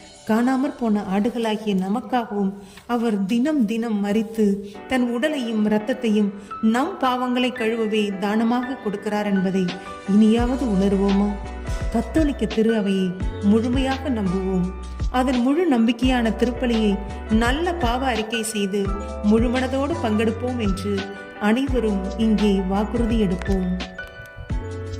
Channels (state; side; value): identical; both; correlation 1.00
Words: காணாமற் போன ஆடுகளாகிய நமக்காகவும் அவர் தினம் தினம் மரித்து தன் உடலையும் இரத்தத்தையும் நம் பாவங்களை கழுவவே தானமாக கொடுக்கிறார் என்பதை இனியாவது உணர்வோமா? கத்தோலிக்க திரு அவையை முழுமையாக நம்புவோம். அதன் முழு நம்பிக்கையான திருப்பலியை நல்ல பாவ அறிக்கை செய்து முழுமனதோடு பங்கெடுப்போம் என்று அனைவரும் இங்கே வாக்குறுதி எடுப்போம்.